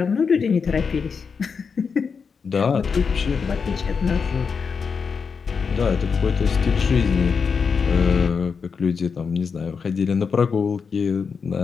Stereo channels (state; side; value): quieter; right; 5.7 dB